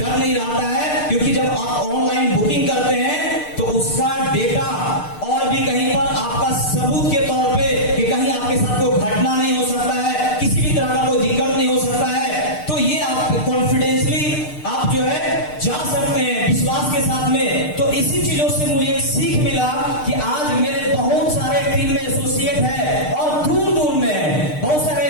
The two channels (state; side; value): late; right; 6.6 ms